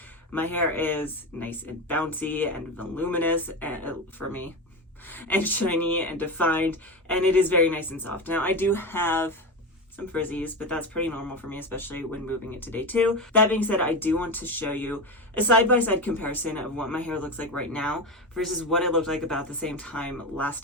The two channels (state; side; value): normal; both; correlation 0.19